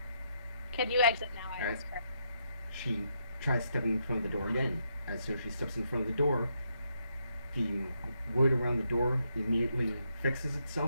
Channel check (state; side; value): inverted; both; correlation -0.78